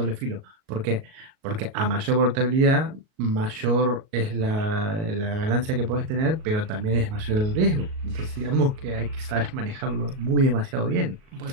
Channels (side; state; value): left; late; 38 ms